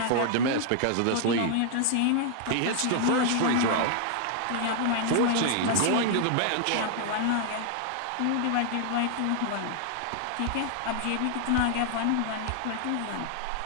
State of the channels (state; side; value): different; both; correlation 0.00